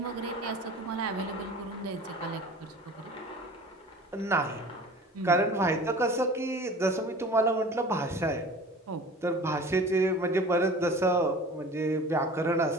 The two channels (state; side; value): normal; both; correlation 0.42